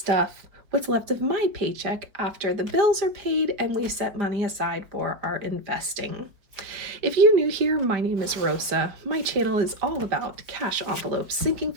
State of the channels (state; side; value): late; left; 4.8 ms